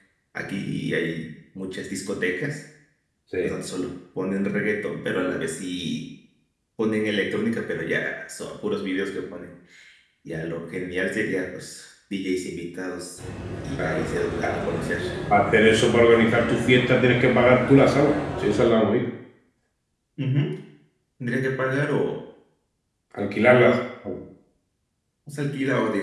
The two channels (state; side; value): identical; both; correlation 1.00